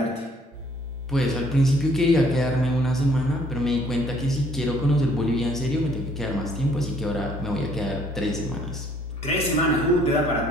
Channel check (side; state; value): both; normal; correlation 0.61